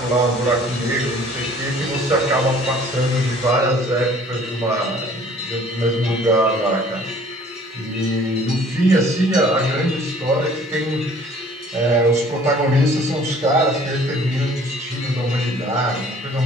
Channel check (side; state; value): both; normal; correlation 0.53